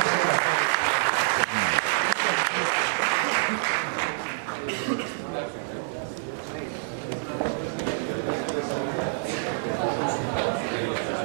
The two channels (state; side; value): silent; left; digital silence